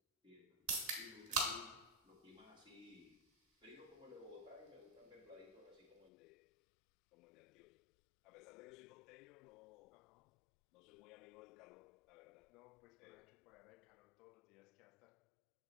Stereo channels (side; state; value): right; drops out; at 6.1 s